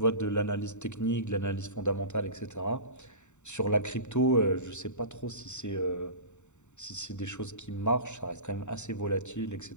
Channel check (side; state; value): right; late; 0.84 ms